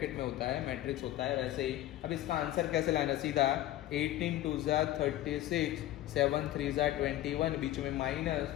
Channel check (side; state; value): right; quieter; 14.4 dB